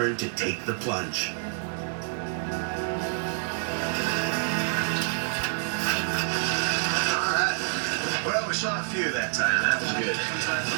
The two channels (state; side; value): silent; left; digital silence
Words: to take the plunge. All right. Well, we saw a few that time. That was good.